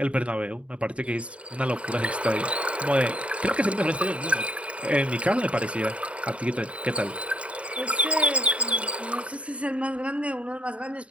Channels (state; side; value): late; left; 0.063 ms